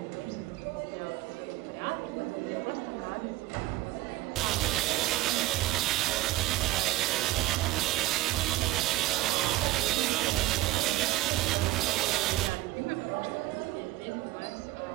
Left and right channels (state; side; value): quieter; left; 16.3 dB